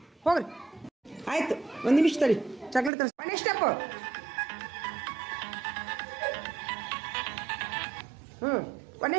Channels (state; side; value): drops out; left; at 2.9 s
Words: ಹೋಗ್ರಿ. ಆಯ್ತು 1 ನಿಮಿಷ ತಡಿ, ಚಾಕ್ಲೇಟ್ ತರಿಸಿ. ಮನೆ ಸ್ಟೆಪ್. ಹ್ಞೂ